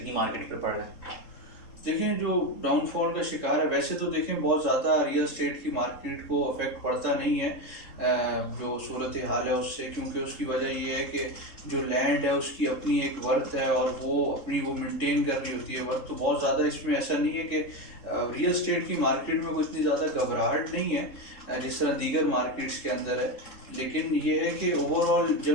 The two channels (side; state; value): right; late; 3.7 ms